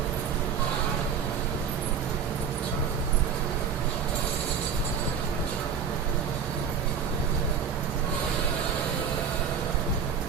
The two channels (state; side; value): quieter; left; 6.9 dB